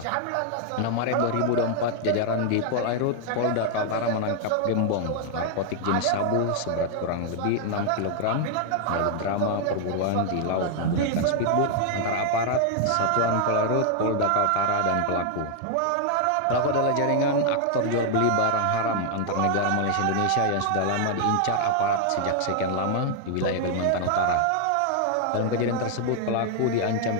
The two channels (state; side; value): different; both; correlation 0.00